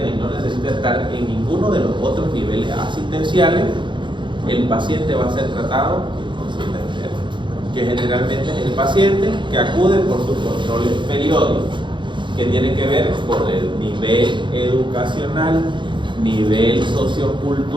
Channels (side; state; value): left; late; 0.23 ms